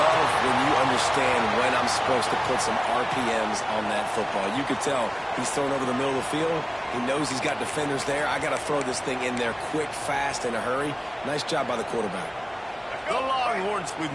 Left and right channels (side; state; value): both; identical; correlation 1.00